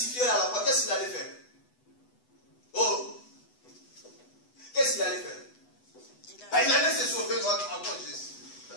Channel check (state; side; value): late; right; 8.0 ms